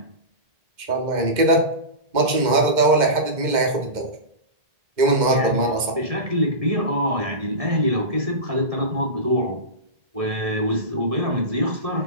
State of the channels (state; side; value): late; left; 2.1 ms